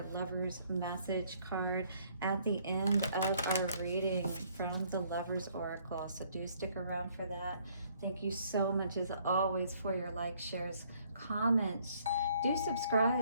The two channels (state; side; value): inverted; both; correlation -0.64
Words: Lover's Message card at the end of our reading from the Lover's Oracle. So do stick around for that. Thank you so much as always for your likes, shares, comments. Do